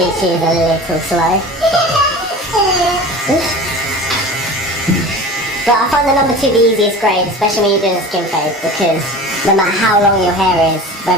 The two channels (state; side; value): normal; both; correlation 0.36